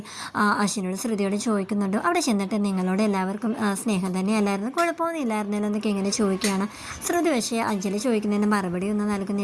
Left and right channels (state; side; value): identical; both; correlation 1.00